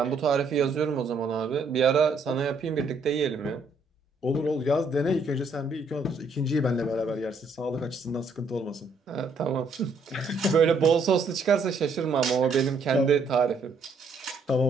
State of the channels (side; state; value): left; quieter; 3.5 dB